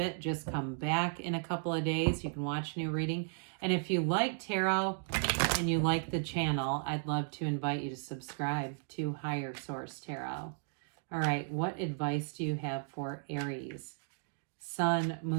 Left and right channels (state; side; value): silent; left; digital silence